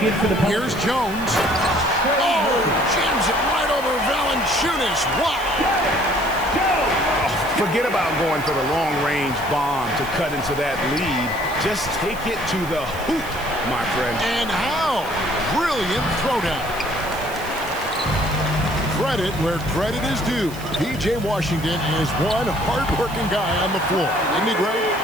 in for the Here's Jones. Oh, jams it right over Valanciunas. What? Forget about going for the long-range bomb to cut into that lead. Just take it to the hoop, my friend. And how? Brilliant throwdown. Credit where credit is due. P.J. Washington is one hard-working guy on the floor. Isn't he great?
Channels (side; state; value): right; noise; hiss, 16 dB below the sound